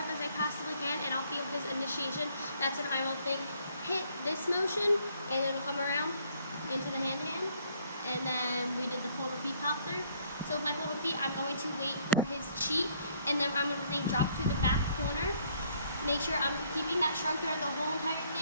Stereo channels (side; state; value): both; inverted; correlation -0.65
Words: as I possibly can, and I'll feel his initiation, that's when I will hit this motion, and it'll come around into the hand-to-hand, and then we did the pull to feet pop through. So with my pull to feet, I'm going to wait for his cheat, and then I'm going to drop to the back corner, make sure I'm keeping that shrug throughout the whole entire